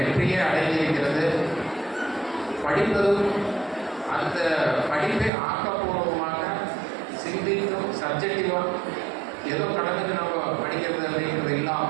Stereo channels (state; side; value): drops out; left; at 5.3 s